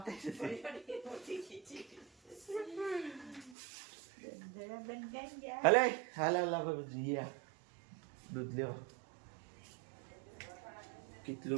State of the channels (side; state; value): left; drops out; at 3.6 s